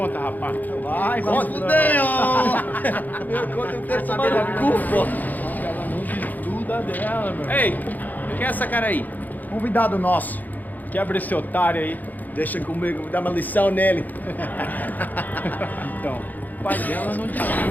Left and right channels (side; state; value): right; late; 0.083 ms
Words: rapaz. Vai, conta. Fudeu! Meu conta eu quero tomar no cu, pô. Ela não desgruda dela, meu. Ei, quem é essa cara aí? Convidado nosso. Quebra esse otário aí. Deixa comigo, vou dar uma lição nele. Então, o pai dela não desgruda.